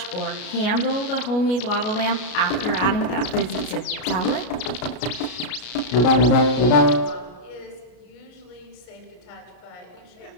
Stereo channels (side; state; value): right; late; 33 ms